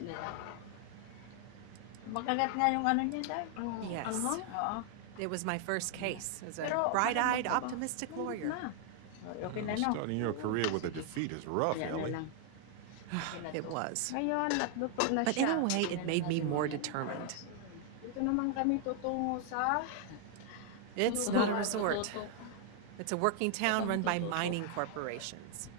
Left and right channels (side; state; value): both; different; correlation 0.00